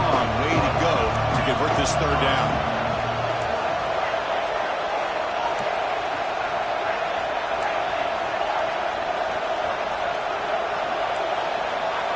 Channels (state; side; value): identical; both; correlation 1.00